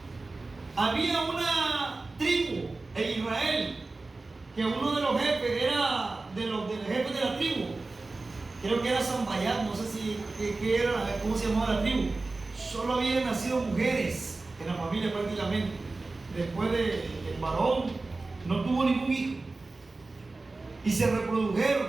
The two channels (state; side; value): quieter; left; 3.4 dB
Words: Había una tribu en Israel que uno de los jefes era de los jefes de la tribu. Creo que era Sambayat, no sé si qué era, cómo se llamaba la tribu. Solo habían nacido mujeres en la familia prácticamente. Después del varón no tuvo ningún hijo. Y se